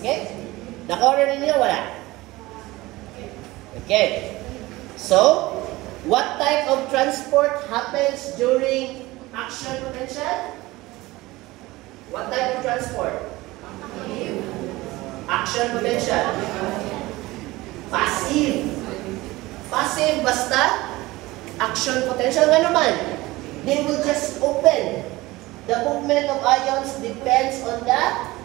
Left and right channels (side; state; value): left; quieter; 19.7 dB